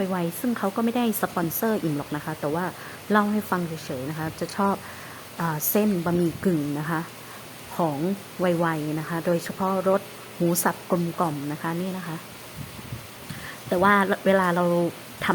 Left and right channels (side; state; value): both; identical; correlation 1.00